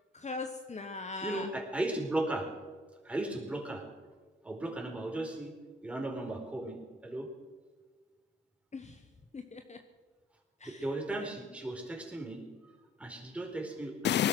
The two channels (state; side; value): normal; both; correlation 0.59